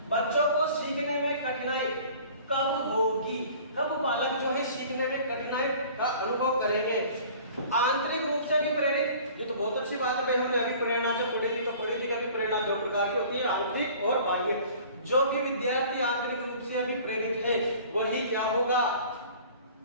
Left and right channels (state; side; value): inverted; both; correlation -0.47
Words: बच्चों को सीखने में कठिनाई कब होगी, कब बालक जो है सीखने में कठिनाई का अनुभव करेंगे। आंतरिक रूप से भी प्रेरित, ये तो बहुत अच्छी बात है भाई, हमने अभी प्रेरणा जो पढ़ी थी, तो पढ़ी थी कि अभी प्रेरणा दो प्रकार की होती है, आंतरिक और बाह्य। जो भी विद्यार्थी आंतरिक रूप से अभी प्रेरित है वही क्या होगा,